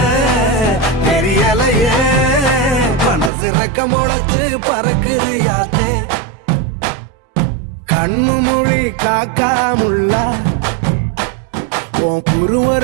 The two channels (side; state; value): left; drops out; at 3.3 s